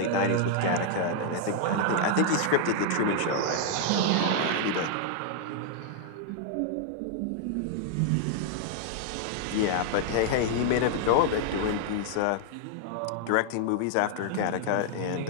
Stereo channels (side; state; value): both; different; correlation -0.01